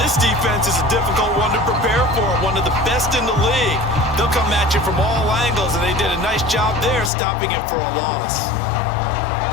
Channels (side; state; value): right; drops out; at 7.1 s